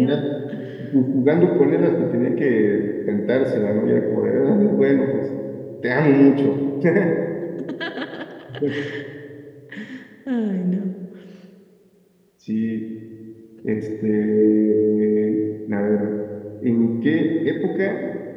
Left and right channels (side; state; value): both; identical; correlation 1.00